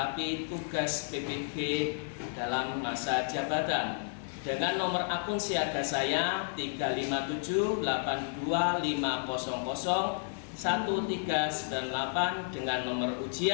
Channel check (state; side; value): silent; right; digital silence